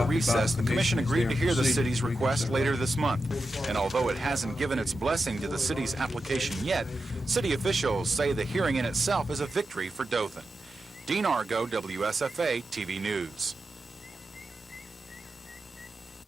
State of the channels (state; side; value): normal; both; correlation 0.90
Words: recess, the commission agreed to hear the city's request later this month. And although it hasn't given its blessing to the city's application yet, city officials say the hearing in itself is a victory for Dothan. Dean Argo, WSFA TV News.